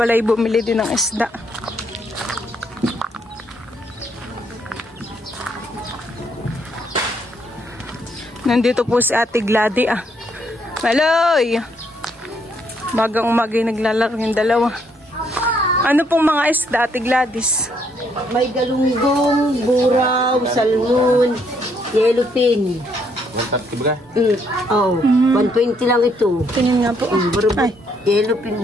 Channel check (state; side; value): normal; both; correlation 0.71